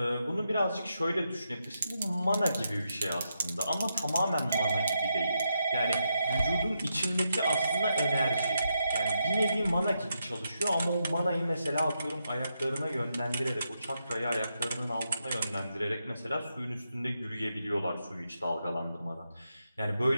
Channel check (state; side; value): inverted; both; correlation -0.83